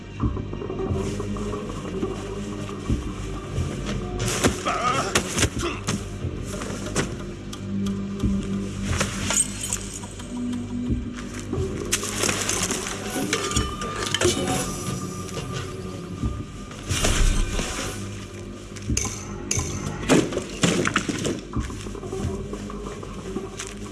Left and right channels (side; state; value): both; identical; correlation 1.00